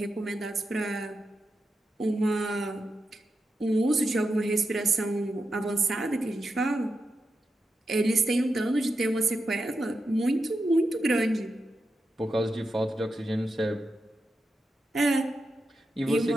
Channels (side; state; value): both; normal; correlation 0.88